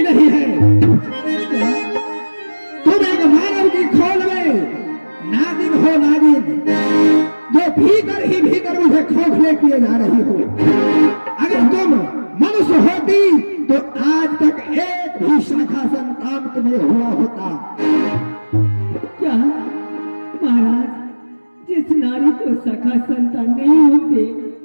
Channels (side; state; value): both; inverted; correlation -1.00